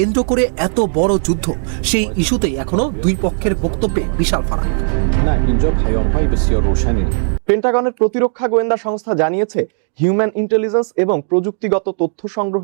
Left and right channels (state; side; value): silent; left; digital silence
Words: করে এত বড় যুদ্ধ, সেই ইস্যুতে এখনো দুই পক্ষের বক্তব্যে বিশাল ফারাক। পেন্টাগনের প্রতিরক্ষা গোয়েন্দা সংস্থা জানিয়েছে হিউম্যান ইন্টেলিজেন্স এবং প্রযুক্তিগত তথ্য